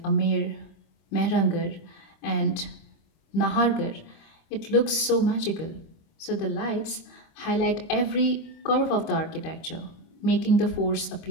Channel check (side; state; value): right; late; 25 ms